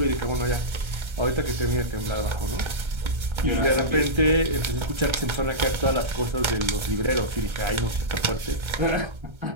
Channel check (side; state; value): left; late; 1.3 ms